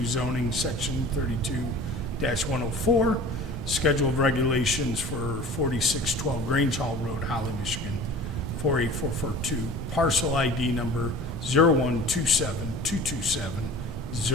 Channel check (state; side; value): normal; both; correlation 0.41